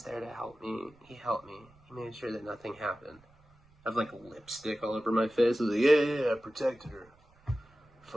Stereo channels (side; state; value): right; noise; rumble, 30 dB below the sound